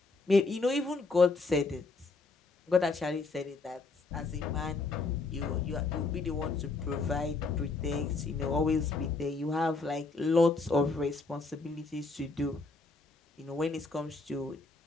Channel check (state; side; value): quieter; right; 3.7 dB